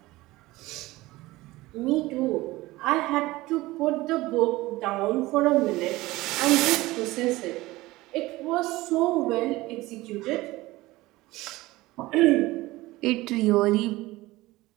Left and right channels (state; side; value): quieter; left; 19.2 dB